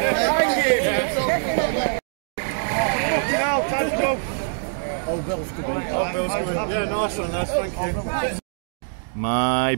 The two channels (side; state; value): left; silent; digital silence